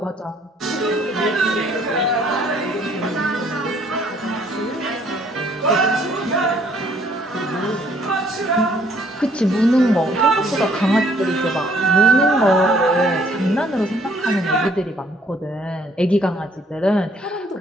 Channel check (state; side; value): normal; both; correlation 0.63